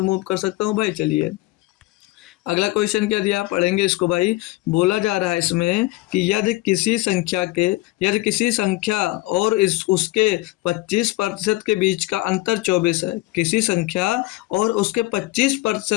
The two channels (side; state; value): right; quieter; 19.1 dB